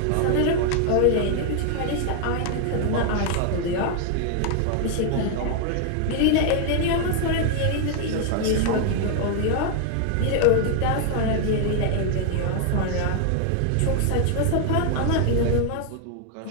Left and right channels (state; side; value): different; both; correlation 0.00